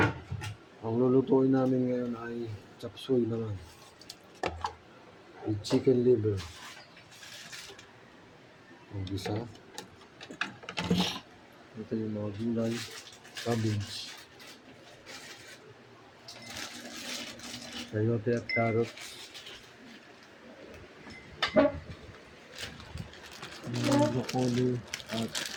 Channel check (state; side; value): identical; both; correlation 1.00